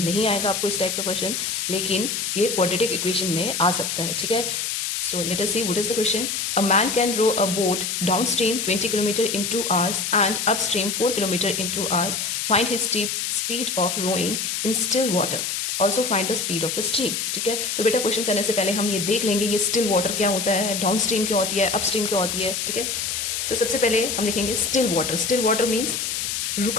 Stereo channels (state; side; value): noise; left; hiss, 2 dB below the sound